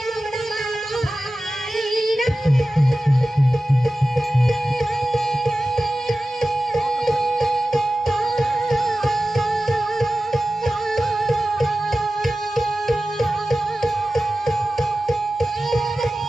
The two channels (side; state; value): both; normal; correlation 0.95